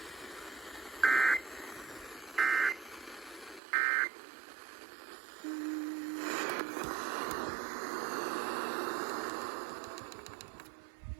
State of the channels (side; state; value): left; drops out; at 3.6 s